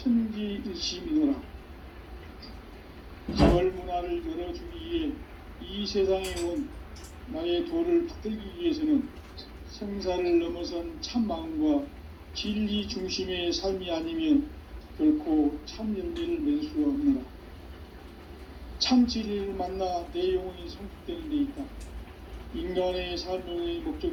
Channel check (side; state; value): both; identical; correlation 1.00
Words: 가을 문화를 열어주기 위해 이 세상에 온 나의 도를 받들기 위해서는 생사를 넘어선 참 마음과 진리 중심의 삶이 아니면 결코 참 열매를 맺을 수가 없노라. 참 진리를 만나 내 영혼이 성숙되는 데 있다. 인간의 삶의